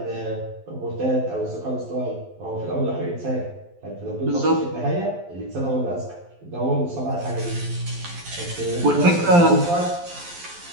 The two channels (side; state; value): left; late; 11 ms